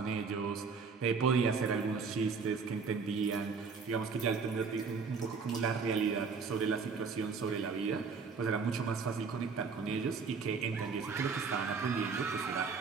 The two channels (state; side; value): quieter; left; 5.1 dB